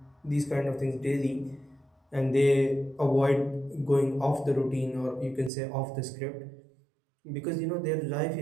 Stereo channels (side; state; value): left; drops out; at 5.5 s